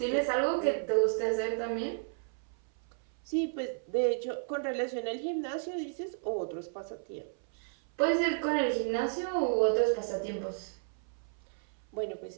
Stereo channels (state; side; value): silent; left; 56 dB below the other